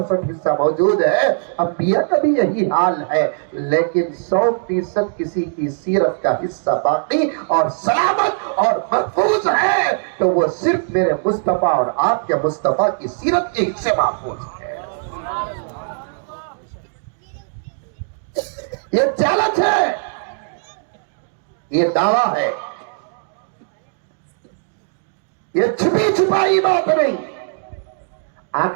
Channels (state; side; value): silent; left; digital silence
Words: حصہ موجود ہے۔ انبیاء کا بھی یہی حال ہے، لیکن 100% کسی کی سیرت کا حصہ باقی اور سلامت اور محفوظ ہے تو وہ صرف میرے مصطفیٰ اور آپ کے مصطفیٰ کی سیرت کے حصے محفوظ ہے۔ یہ چیلنج ہے، یہ دعویٰ ہے، یہ چھپی چھپائی بات نہیں۔